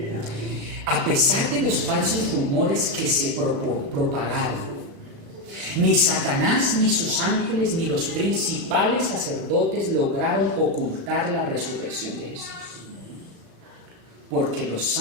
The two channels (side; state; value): left; late; 36 ms